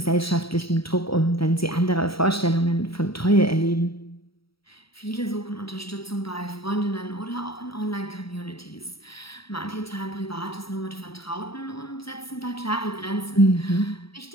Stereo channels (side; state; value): right; late; 0.75 ms